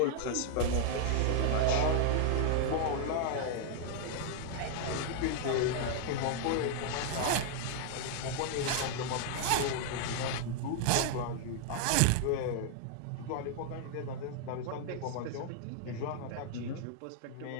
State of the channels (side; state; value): both; different; correlation 0.00